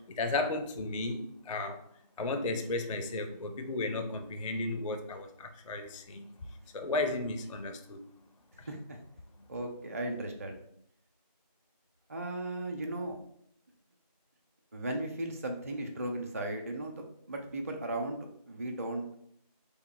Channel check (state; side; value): inverted; both; correlation -0.40